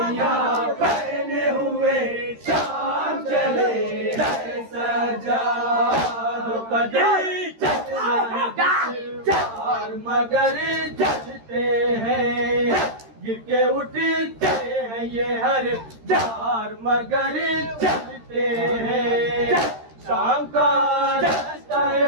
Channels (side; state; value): left; late; 13 ms